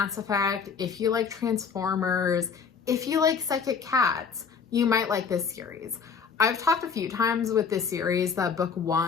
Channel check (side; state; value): right; quieter; 6.1 dB